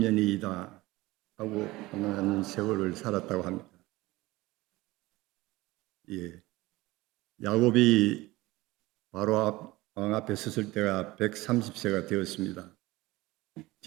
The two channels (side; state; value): left; quieter; 19.8 dB